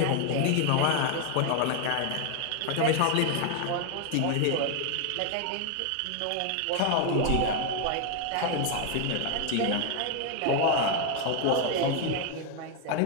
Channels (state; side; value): different; both; correlation 0.01